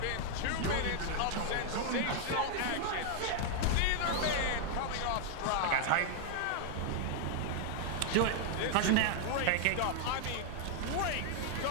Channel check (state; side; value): different; both; correlation -0.01